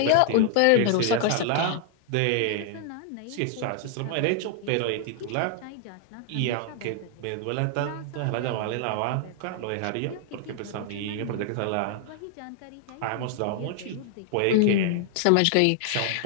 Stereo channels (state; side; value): different; both; correlation 0.00